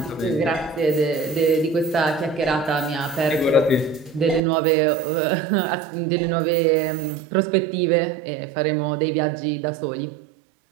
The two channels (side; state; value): left; drops out; at 4.4 s